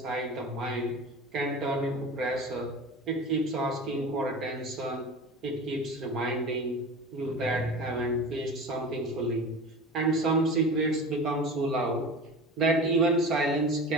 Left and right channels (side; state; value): both; normal; correlation 0.33